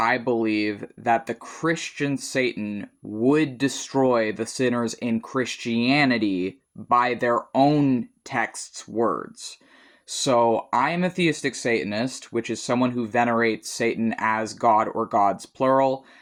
believe that the Christian Satan would destroy the sinners in Christianity by their own text's words. So, I am a theistic Satanist, which is someone who venerates Satan as God or gods plural.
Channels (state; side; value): identical; both; correlation 1.00